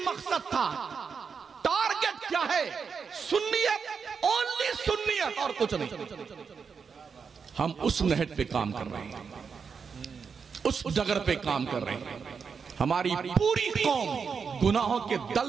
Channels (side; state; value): left; quieter; 5.9 dB